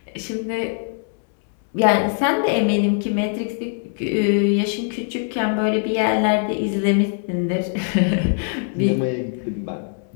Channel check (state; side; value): silent; right; 59 dB below the other